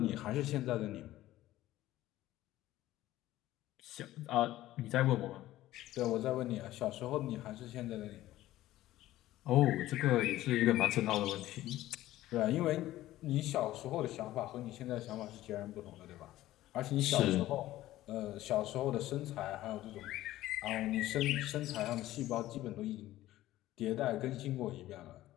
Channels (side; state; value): right; quieter; 15.2 dB